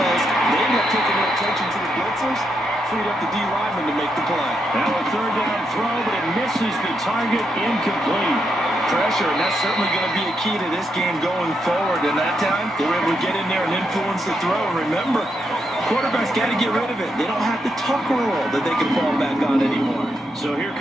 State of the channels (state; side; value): normal; both; correlation 0.81